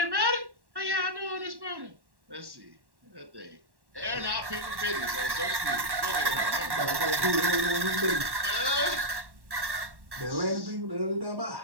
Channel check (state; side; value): late; left; 1.1 ms